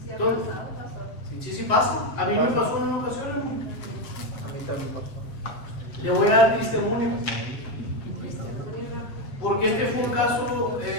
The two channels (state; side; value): late; right; 7.5 ms